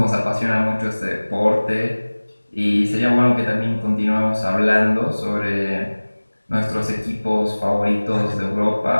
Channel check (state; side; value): inverted; both; correlation -1.00